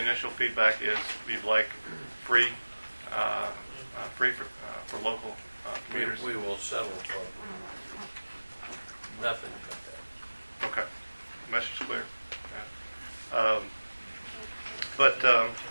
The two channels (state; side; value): inverted; both; correlation -1.00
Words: initial feedback is we'd like free for local commuters. We will settle for nothing but that. Okay. Message clear. Yeah. But